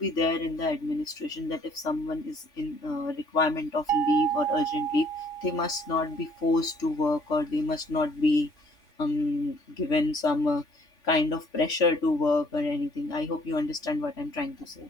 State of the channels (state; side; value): late; right; 3.6 ms